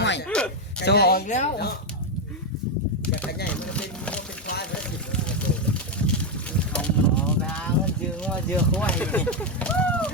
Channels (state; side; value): normal; both; correlation 0.05